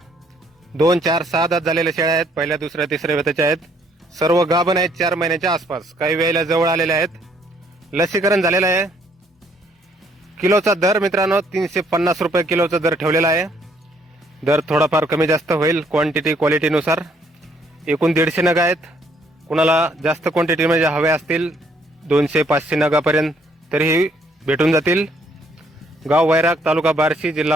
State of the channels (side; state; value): both; normal; correlation 0.66